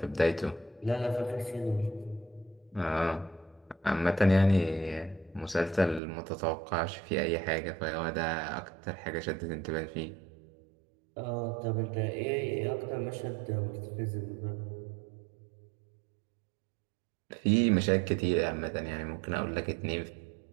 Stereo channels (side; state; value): left; drops out; at 6.0 s